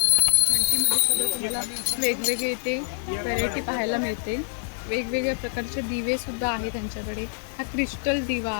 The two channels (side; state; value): right; silent; 61 dB below the other